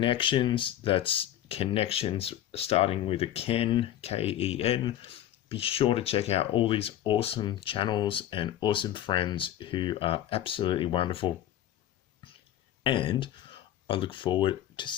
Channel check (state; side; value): quieter; right; 12.0 dB